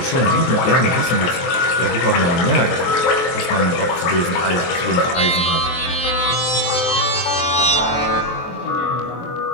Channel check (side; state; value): right; late; 23 ms